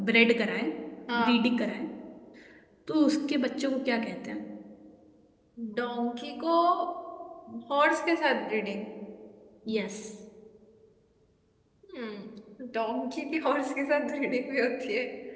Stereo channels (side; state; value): both; identical; correlation 1.00